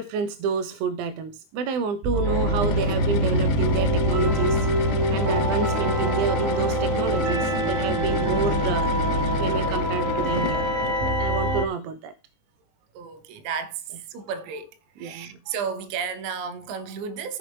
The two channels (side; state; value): left; late; 20 ms